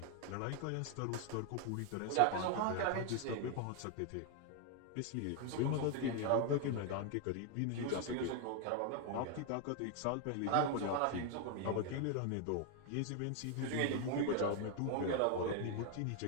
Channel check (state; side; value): different; both; correlation 0.00